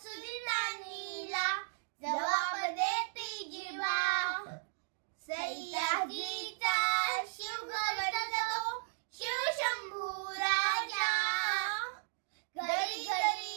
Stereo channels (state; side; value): silent; left; digital silence